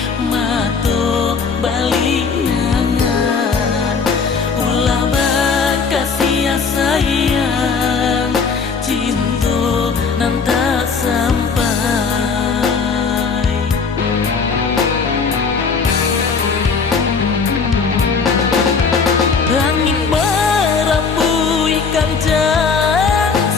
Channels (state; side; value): quieter; right; 5.2 dB